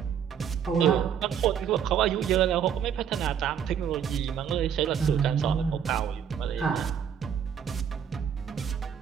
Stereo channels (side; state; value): left; quieter; 8.2 dB